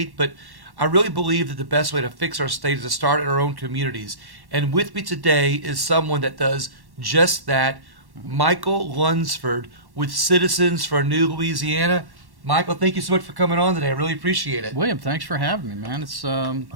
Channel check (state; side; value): late; left; 1.1 ms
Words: But I really believe that the best way to fix our state is to start in our own communities. And with me today is someone that does just that, Michael Lunsford with Citizens for New Louisiana. Michael, thank you so much for coming on today. I really appreciate it. William, thanks for having me, man. It's